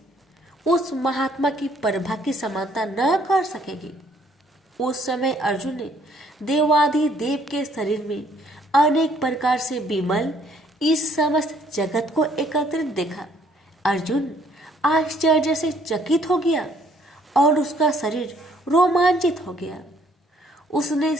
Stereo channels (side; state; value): both; normal; correlation 0.64